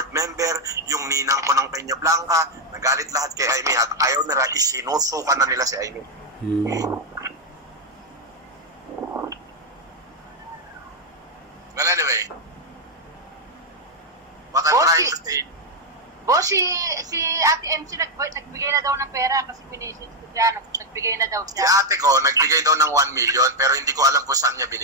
member, yung ninang ko ng Peña Blanca. Nagalit lahat kay Aimee at ayaw nila, isinusukan na nila si Aimee. Well, anyway, what I'm trying to say, Boss, si Ate MC nagbigay na daw ng pera kasi minisis ko siya. Nagbigay na daw si siya. ate ko, nagbigay daw ng 1 million pero hindi ko alam kung saan niya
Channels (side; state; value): both; normal; correlation 0.01